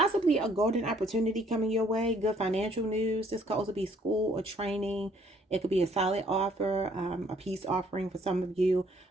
a golden opportunity coming your way. Good financial news. This could also be school or training. It could be a solid offer, a peace offering for some of you,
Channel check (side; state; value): both; normal; correlation 0.62